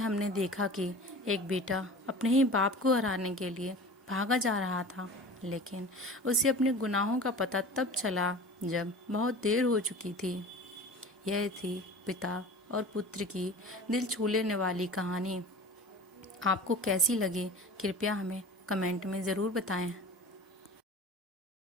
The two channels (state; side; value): normal; both; correlation 0.38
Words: देखा कि एक बेटा अपने ही बाप को हराने के लिए भागा जा रहा था, लेकिन उसे अपने गुनाहों का पता तब चला जब बहुत देर हो चुकी थी। यह थी पिता और पुत्र की दिल छू लेने वाली कहानी। आपको कैसी लगी कृपया हमें कमेंट में ज़रूर बताएं।